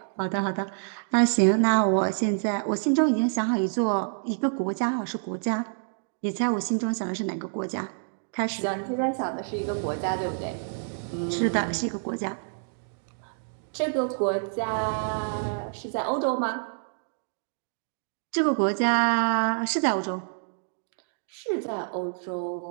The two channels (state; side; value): silent; left; digital silence